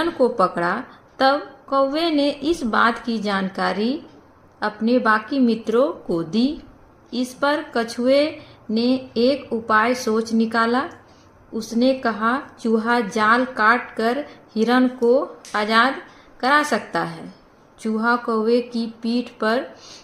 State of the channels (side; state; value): both; identical; correlation 1.00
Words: को पकड़ा तब कौवे ने इस बात की जानकारी अपने बाकी मित्रों को दी। इस पर कछुए ने एक उपाय सोच निकाला। उसने कहा, चूहा जाल काट कर हिरण को आजाद करा सकता है। चूहा कौवे की पीठ पर